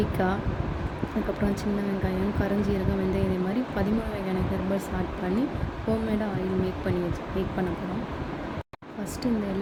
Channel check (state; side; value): identical; both; correlation 1.00